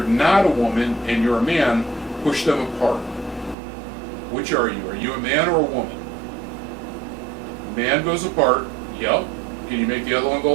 not a woman and you're a man, push them apart. Which are you? Are you a man or a woman? Man goes apart. Yep. Can you make the other one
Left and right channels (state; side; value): drops out; left; at 3.6 s